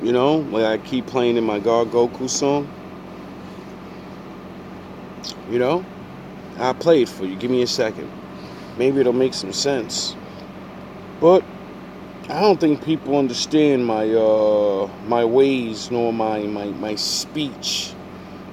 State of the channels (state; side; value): identical; both; correlation 1.00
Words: You know, like I keep playing in my God Goku song. You know, I'll play it for you. Give me a second. Maybe it'll make some sense. But I don't think people understand my my ways nor my speech.